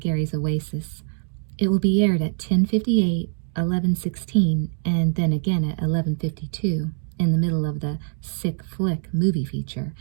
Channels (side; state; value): left; silent; digital silence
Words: Oasis. It will be aired at 10:58, 11:16, and then again at 11:52, in the middle of the Sick Flick movie feature,